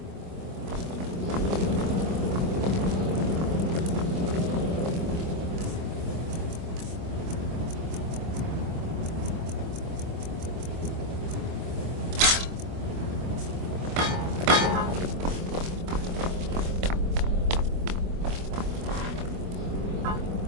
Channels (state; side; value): late; left; 24 ms